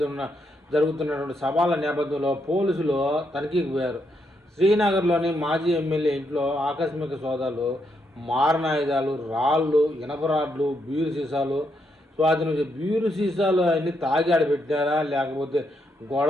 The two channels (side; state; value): both; normal; correlation 0.79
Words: జరుగుతున్నటువంటి సవాళ్ళ నేపథ్యంలో పోలీసులు తనిఖీకి పోయారు. శ్రీనగర్లోని మాజీ ఎమ్మెల్యే ఇంట్లో ఆకస్మిక సోదాలు, మారణాయుధాలు, రాళ్ళు, ఇనప రాడ్లు, బీరు సీసాలు స్వాధీనం. బీరు సీసాలు అన్ని తాగి ఆడ పెట్టినారా లేకపోతే